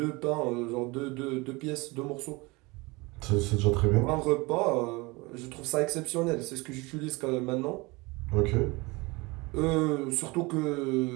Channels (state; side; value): quieter; left; 24.6 dB